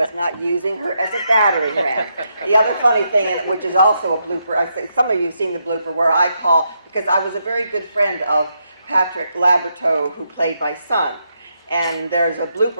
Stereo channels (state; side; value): inverted; both; correlation -0.80